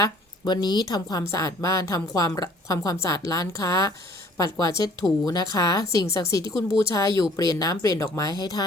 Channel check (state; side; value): normal; both; correlation 0.55